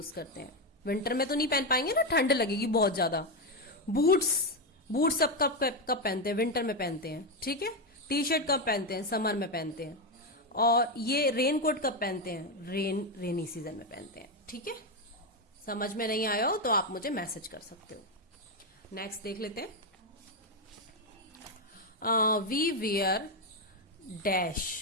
करते हैं। विंटर में तो नहीं पहन पाएंगे ना, ठंड लगेगी बहुत ज्यादा। बूट्स, बूट्स सब कब कब पहनते हैं? विंटर में पहनते हैं, ठीक है। टी शर्ट कब पहनते हैं? समर में पहनते हैं। और ये रेन कोट कब पहनते हैं? रेनी सीजन में पहनते हैं, ठीक है। समझ में नहीं आया हो तो आप मुझे मैसेज कर सकते हो। नेक्स्ट देख लेते हैं। We wear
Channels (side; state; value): both; normal; correlation 0.08